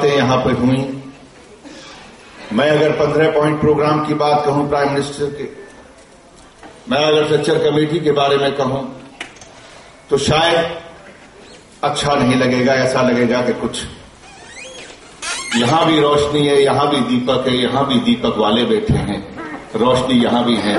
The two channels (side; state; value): both; identical; correlation 1.00